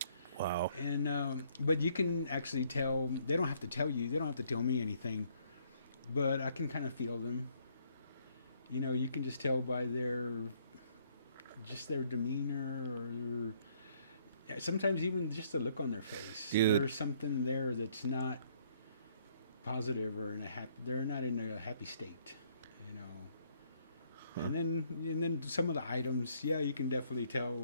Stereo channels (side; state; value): both; inverted; correlation -0.66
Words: Wow. And but you can actually tell. They don't have to tell you. They don't have to tell me anything, but I can kind of feel them. You can just tell by their demeanor, or sometimes even just the look on their face. Dude. There's something there that's not positive, or they're not in a happy state. Huh. And then some of the items, yeah, you can definitely tell